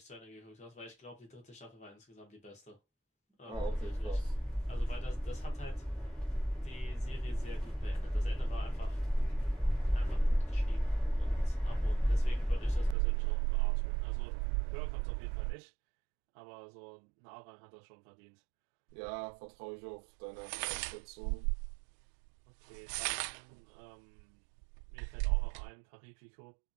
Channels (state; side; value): drops out; left; at 13.0 s